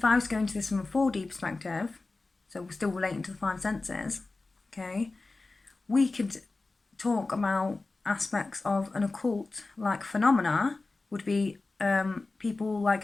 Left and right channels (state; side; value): quieter; right; 3.5 dB